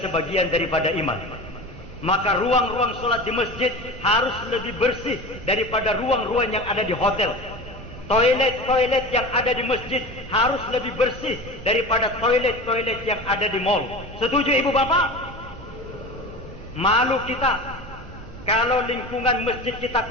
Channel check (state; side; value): normal; both; correlation 0.32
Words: daripada iman. Maka ruang-ruang sholat di masjid harus lebih bersih daripada ruang-ruang yang ada di hotel. Toilet-toilet yang ada di masjid harus lebih bersih daripada toilet-toilet yang ada di mall. Setuju Ibu Bapak? Malu kita kalau lingkungan masjid kita